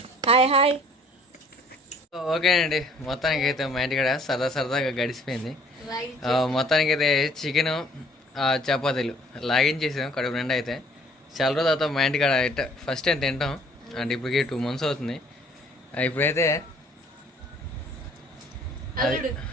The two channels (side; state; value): both; normal; correlation 0.57